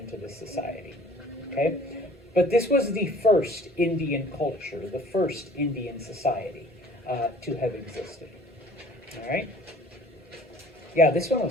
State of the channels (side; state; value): both; normal; correlation 0.51